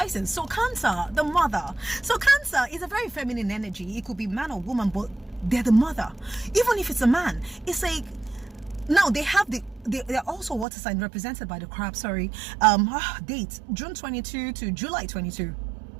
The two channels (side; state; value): left; drops out; at 10.7 s